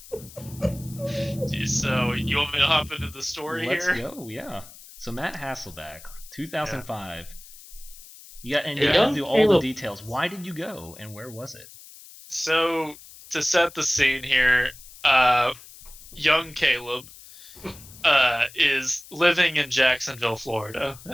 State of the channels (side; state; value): left; noise; hiss, 19 dB below the sound